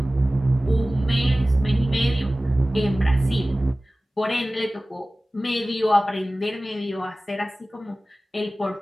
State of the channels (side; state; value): both; normal; correlation 0.97